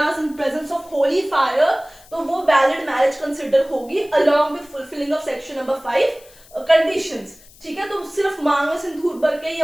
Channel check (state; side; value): noise; left; hiss, 25 dB below the sound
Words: in presence of holy fire, तो वो valid marriage consider होगी along with fulfilling of section number 5 conditions. ठीक है, तो सिर्फ मांग में सिंदूर भर के या